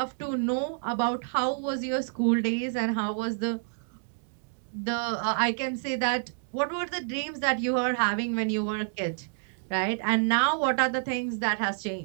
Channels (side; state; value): left; silent; digital silence